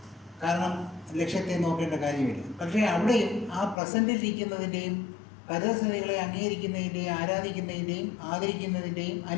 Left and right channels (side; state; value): right; drops out; at 3.8 s